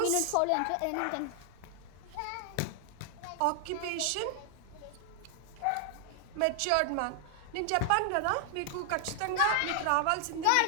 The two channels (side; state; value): both; different; correlation 0.00